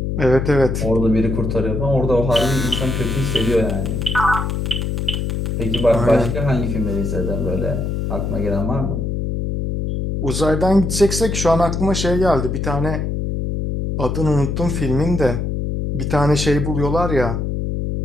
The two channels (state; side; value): noise; left; hum, 2 dB below the sound